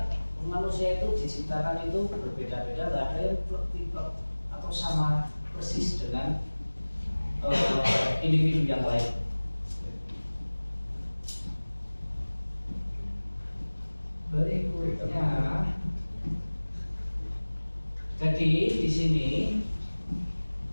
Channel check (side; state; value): both; inverted; correlation -1.00